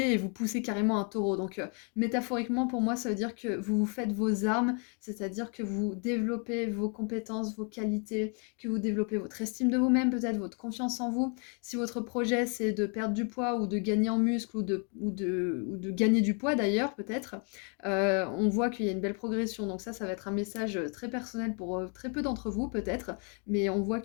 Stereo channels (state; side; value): quieter; right; 38.4 dB